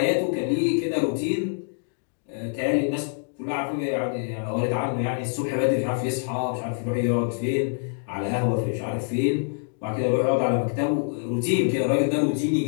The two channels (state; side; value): silent; right; digital silence